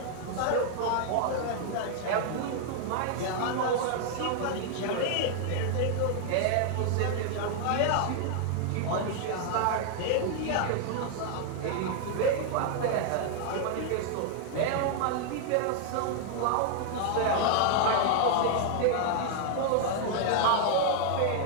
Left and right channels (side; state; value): both; different; correlation 0.00